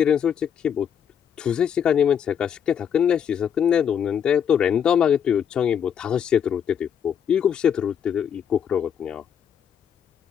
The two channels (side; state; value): right; quieter; 8.3 dB